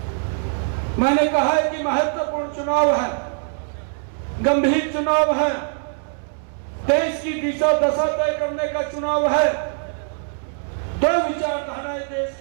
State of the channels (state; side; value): silent; left; digital silence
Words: मैंने कहा है कि महत्वपूर्ण चुनाव है, गंभीर चुनाव है, देश की दिशा दशा तय करने का चुनाव है। दो विचारधाराएं देश